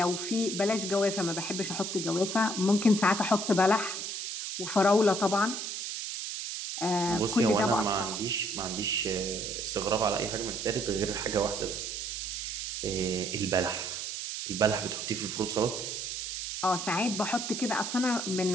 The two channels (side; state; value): right; noise; hiss, 5 dB below the sound